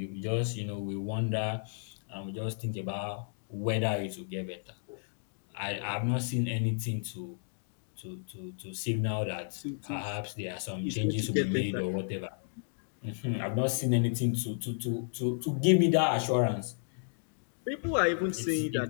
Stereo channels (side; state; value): right; silent; digital silence